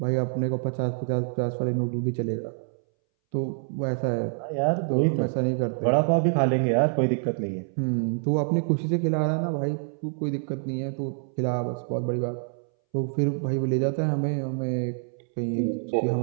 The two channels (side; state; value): left; silent; 61 dB below the other